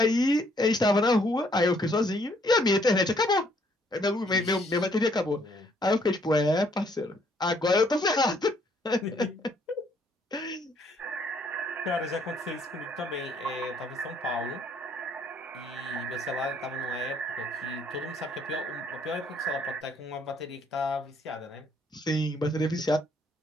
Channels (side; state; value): both; normal; correlation 0.66